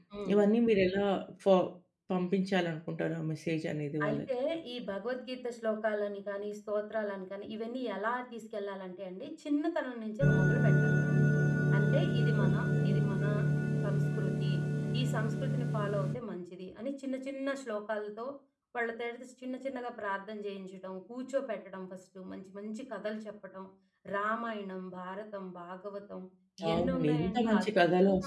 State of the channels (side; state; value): both; identical; correlation 1.00